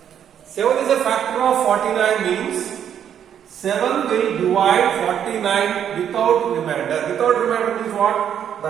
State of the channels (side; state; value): left; quieter; 9.2 dB